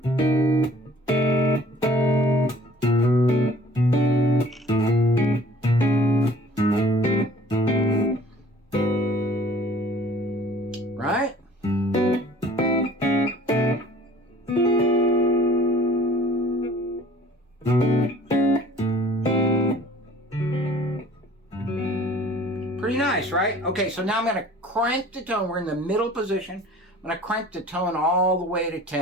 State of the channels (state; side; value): normal; both; correlation 0.51